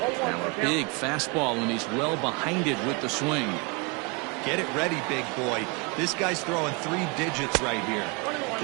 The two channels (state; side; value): quieter; left; 30.0 dB